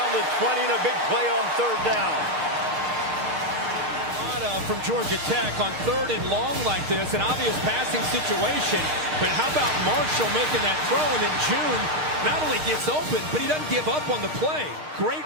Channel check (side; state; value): left; late; 6.5 ms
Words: the 20, and a big play on 3rd down. From Georgia Tech on 3rd and long like this, an obvious passing situation. But how about Marshall making that throw, and then June not only gets open, but he doesn't give up on the play. Great